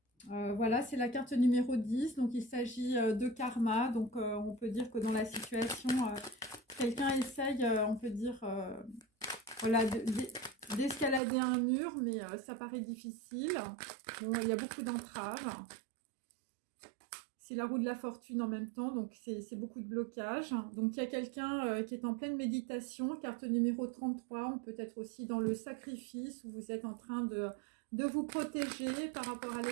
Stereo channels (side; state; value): left; drops out; at 11.2 s